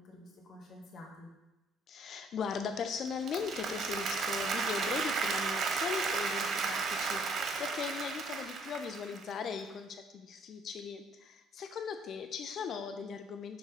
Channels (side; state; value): both; normal; correlation 0.62